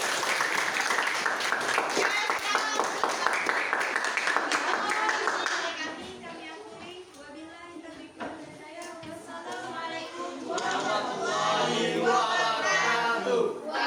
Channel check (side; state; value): both; identical; correlation 1.00